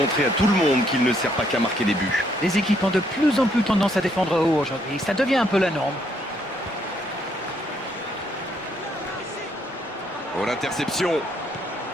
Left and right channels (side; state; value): both; normal; correlation 0.71